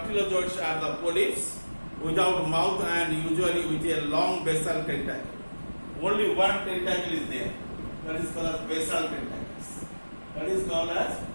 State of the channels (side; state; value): both; inverted; correlation -1.00